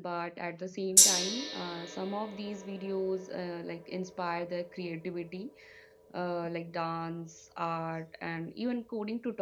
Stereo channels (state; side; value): identical; both; correlation 1.00